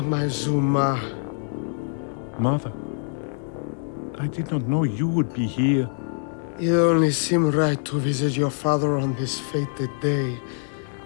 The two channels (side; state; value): right; silent; digital silence